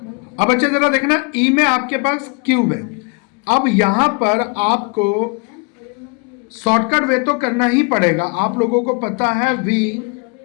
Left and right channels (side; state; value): right; quieter; 33.1 dB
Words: अब बच्चे जरा देखना, ई में आपके पास क्यूब है। अब यहां पर आपको शॉर्टकट वे तो करना ही पड़ेगा। आप लोगों को पता है वी